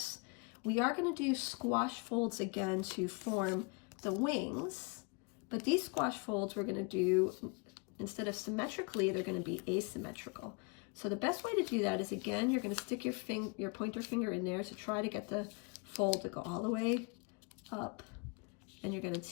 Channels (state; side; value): quieter; right; 31.0 dB